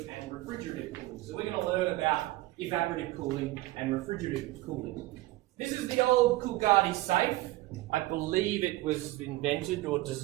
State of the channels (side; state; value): left; quieter; 18.2 dB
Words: and refrigerative cooling. So we're going to learn about evaporative cooling and refrigerative cooling. This is the old Coolgardie safe. I believe it was invented or